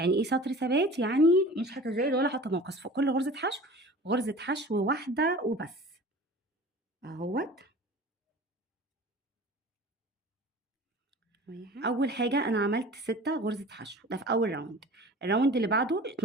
ايه سطر ثبات؟ يعني مش هتزايد ولا هتناقص في كل غرزة حشو، غرزة حشو واحدة وبس اهوت. اول حاجه انا عملت 6 غرزة حشو، ده في اول راوند. الراوند اللي بعده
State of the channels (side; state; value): both; normal; correlation 0.41